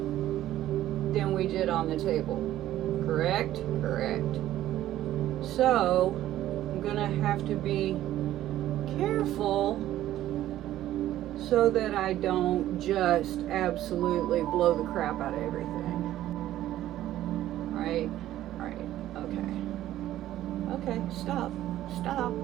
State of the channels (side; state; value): left; quieter; 13.5 dB